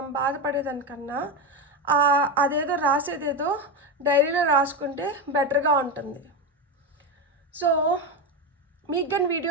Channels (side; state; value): both; normal; correlation 0.15